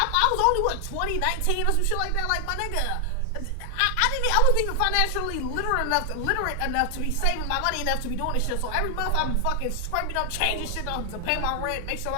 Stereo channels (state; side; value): different; both; correlation 0.00